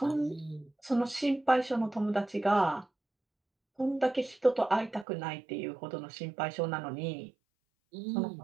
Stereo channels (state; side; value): drops out; left; at 5.1 s